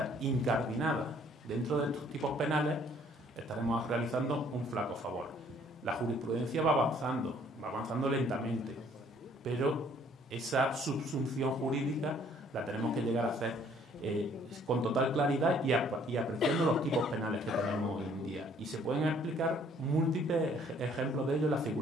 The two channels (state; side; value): normal; both; correlation 0.60